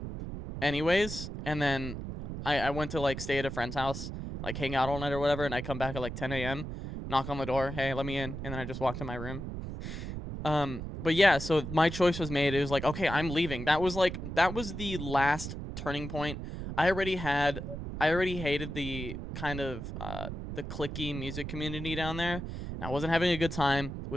anyways, and then I went to like stay at a friend's house, like hang out all night or whatever, and I come back at like 10 a.m., knock on the door, hey, let me in, and then I just walk to my room. But yeah, so my choice was made. It was like, okay, I'm leaving. That was the last turning point. I already hated the kind of the cliquey music community down there, and I wasn't having a good time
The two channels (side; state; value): right; noise; rumble, 7 dB below the sound